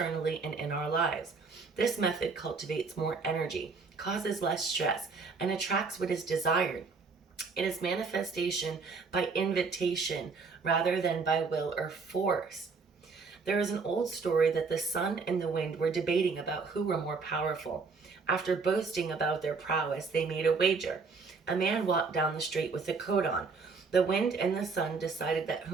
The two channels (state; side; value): quieter; left; 4.7 dB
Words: and in our lives. This method cultivates more energy, causes less stress, and attracts what is desired. It is manifestation by invitation rather than by will or force. There is an old story that the sun and the wind were debating about who were more powerful. After boasting about their prowess, they made a wager. A man walked down the street with a coat on. The wind and the sun decided that